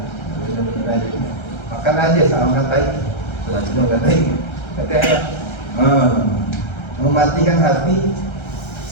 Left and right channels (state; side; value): late; right; 1.3 ms